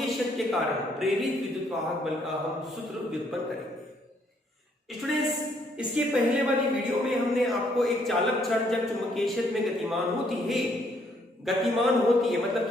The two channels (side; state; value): both; normal; correlation 0.69